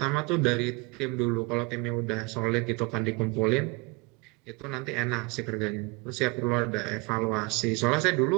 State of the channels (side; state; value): left; quieter; 27.8 dB